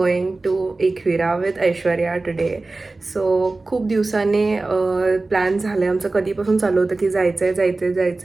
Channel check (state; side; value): quieter; left; 3.3 dB